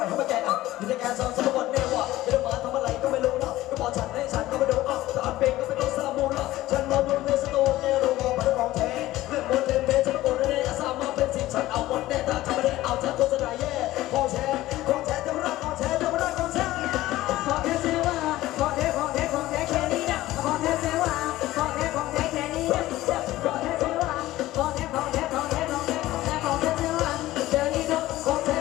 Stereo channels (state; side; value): quieter; right; 16.3 dB